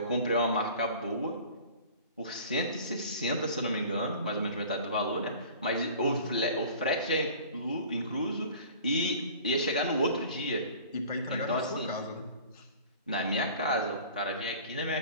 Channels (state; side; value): inverted; both; correlation -0.44